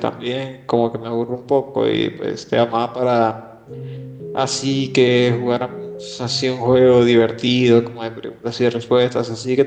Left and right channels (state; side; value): identical; both; correlation 1.00